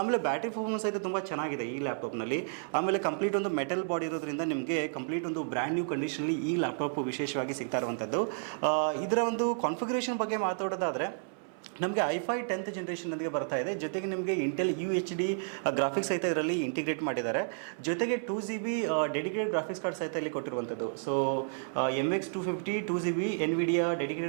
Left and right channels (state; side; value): silent; left; 57 dB below the other